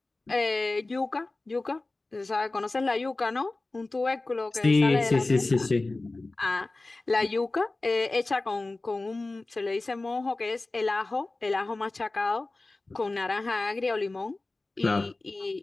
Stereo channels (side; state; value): right; quieter; 3.1 dB